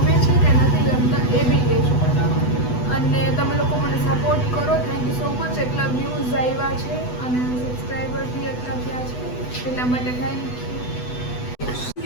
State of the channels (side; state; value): right; late; 8.1 ms